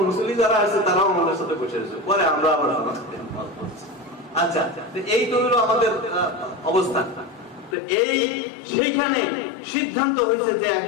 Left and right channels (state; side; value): drops out; right; at 7.8 s